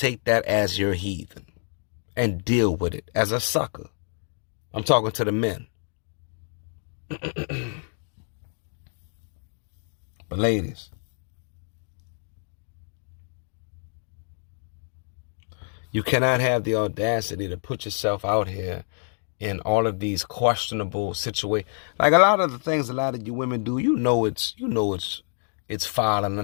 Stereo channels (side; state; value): right; silent; 60 dB below the other